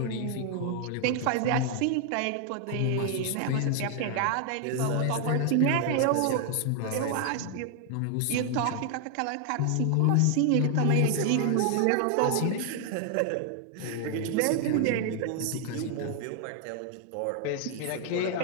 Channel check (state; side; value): different; both; correlation 0.00